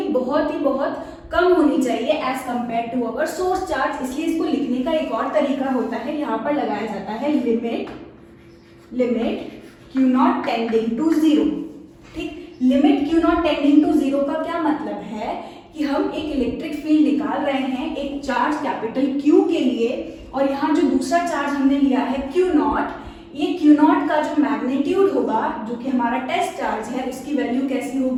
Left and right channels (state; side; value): identical; both; correlation 1.00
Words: बहुत कम होनी चाहिए as compare to our source charge. इसलिए इसको लिखने का एक और तरीका होता है, यहाँ पर लगाया जाता है limit Q not tending to zero. ठीक, limit Q not tending to zero का क्या मतलब है कि हम एक इलेक्ट्रिक फील्ड निकाल रहे हैं एक चार्ज कैपिटल क्यू के लिए, और यहाँ जो दूसरा चार्ज हमने लिया है क्यू नॉट, ये क्यू नॉट का जो मैग्नीट्यूड होगा, जो कि हमारा टेस्ट चार्ज है, उसकी वैल्यू कैसी